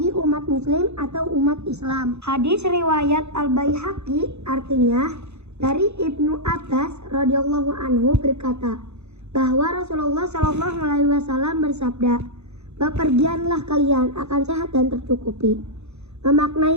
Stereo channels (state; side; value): late; left; 0.81 ms